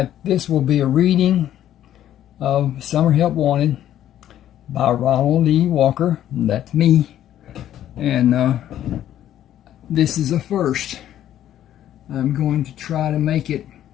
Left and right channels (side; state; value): right; quieter; 11.7 dB